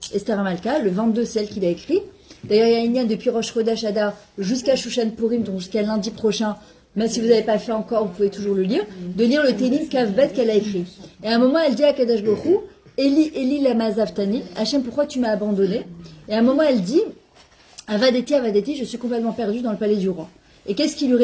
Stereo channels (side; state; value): both; identical; correlation 1.00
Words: Esther Amalka, le 22, c'est elle qui l'a écrit. D'ailleurs, il y a une lien depuis Rosh Chodesh Adar jusqu'à Shushan Purim, donc jusqu'à lundi prochain. Même si vous n'avez pas fait encore, vous pouvez toujours le lire. De lire le Télim Kavbet qu'elle a écrit. Et à un moment, elle dit à Kadosh Baruch Hu, Eli, Eli lama zavtani, Hachem, pourquoi tu m'as abandonné? Et à un moment, elle dit, Avadeti, je suis complètement perdue dans le palais du roi. Et qu'est-ce qu'il lui